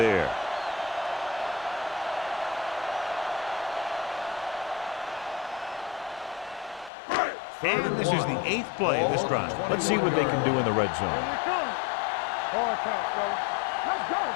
And this is the 8th play of this drive. Let's see what they can do in the red zone. Here we come. Hard count, fellas. Let's go.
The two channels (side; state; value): right; drops out; at 6.9 s